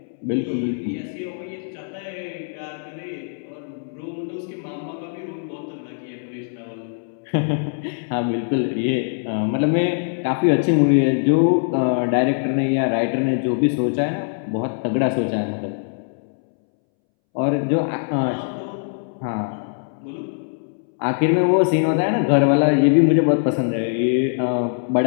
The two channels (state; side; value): silent; right; 64 dB below the other